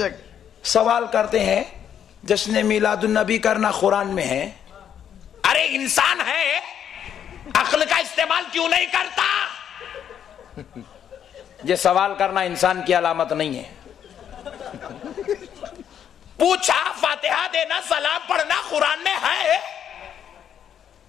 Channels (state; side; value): quieter; right; 9.1 dB